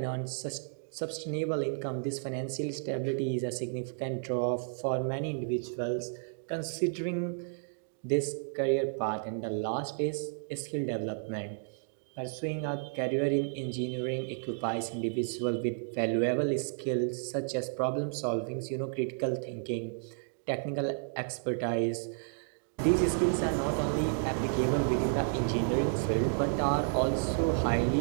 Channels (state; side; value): silent; left; digital silence